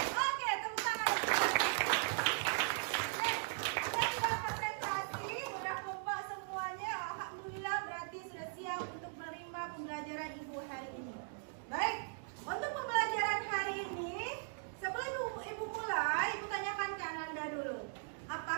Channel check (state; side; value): silent; left; digital silence